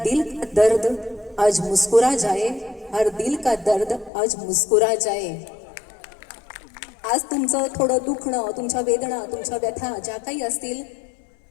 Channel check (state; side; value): drops out; right; at 4.1 s